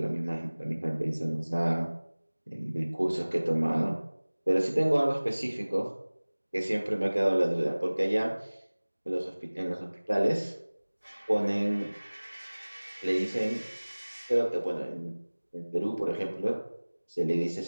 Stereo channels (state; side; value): inverted; both; correlation -1.00